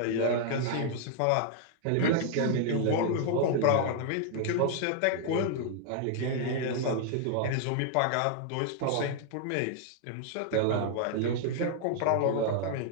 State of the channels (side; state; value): both; different; correlation 0.00